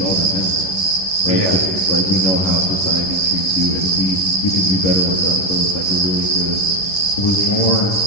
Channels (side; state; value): right; late; 10 ms